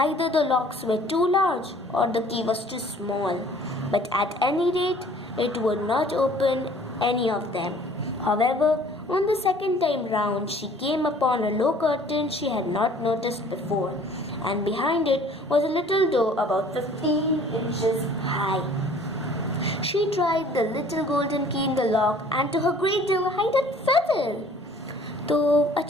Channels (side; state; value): both; normal; correlation 0.53